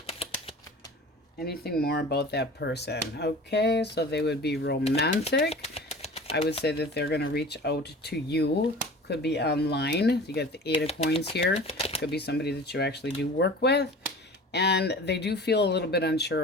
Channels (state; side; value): normal; both; correlation 0.39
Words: Anything more about that person? Okay, so they would be romantic. I would say that they're going to reach out to you. Could be online. You got the 8 of Coins here. Could be somebody that you actually do work with. And they do feel a little bit